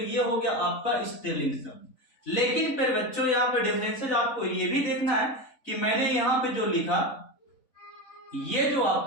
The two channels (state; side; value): late; right; 4.0 ms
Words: हो गया आपका स्त्रीलिंग शब्द। लेकिन फिर बच्चों यहाँ पे डिफरेंसेस आपको ये भी देखना है कि मैंने यहाँ पे जो लिखा, ये जो